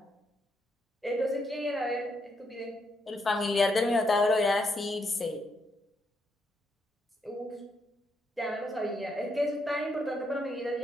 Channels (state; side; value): normal; both; correlation 0.78